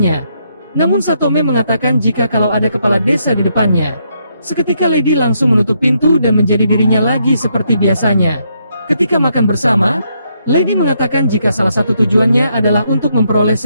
Namun Satome mengatakan jika kalau ada kepala desa di depannya. Seketika Lady langsung menutup pintu dan menjadi dirinya lagi seperti biasanya. Ketika makan bersama, Lady mengatakan jika salah satu tujuannya adalah untuk memperoleh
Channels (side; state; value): both; inverted; correlation -0.76